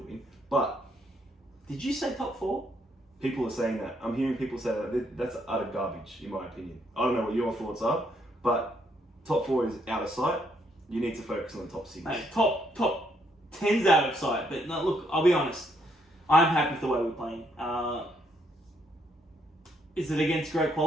But did you say top 4? People are saying that. I'm hearing people say that. That's utter garbage, in my opinion. I don't know what your thoughts are, but top 4 is out of sight. You need to focus on the top 6. Mate, top 10's out of sight. But no, look, I'll be honest. I'm happy with the way we're playing. Is it against great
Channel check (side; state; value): both; normal; correlation 0.72